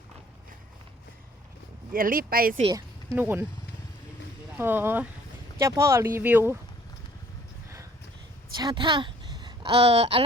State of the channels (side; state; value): both; normal; correlation 0.57